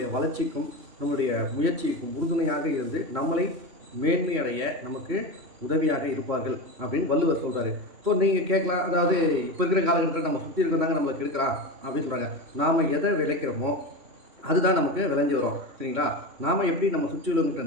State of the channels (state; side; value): late; left; 3.1 ms